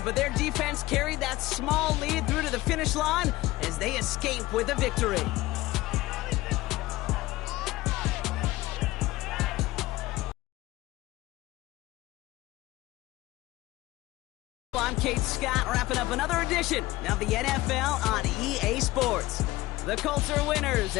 but their defense carried that small lead through to the finish line as they escape with a victory. I'm Kate Scott, wrapping up another edition of the NFL on EA Sports. The Colts are winners,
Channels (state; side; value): quieter; right; 18.3 dB